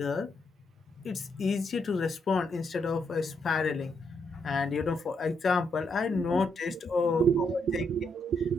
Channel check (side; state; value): both; normal; correlation 0.77